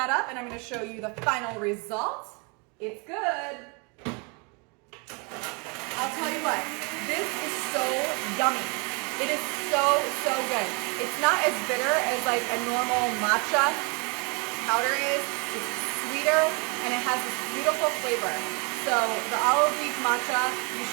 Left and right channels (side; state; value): left; quieter; 32.3 dB